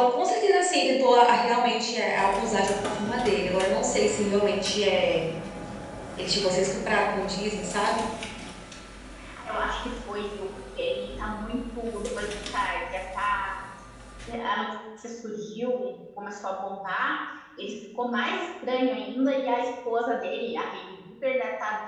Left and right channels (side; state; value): both; identical; correlation 1.00